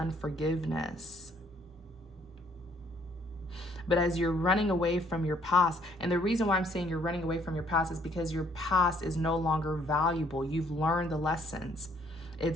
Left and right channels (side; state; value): both; normal; correlation 0.64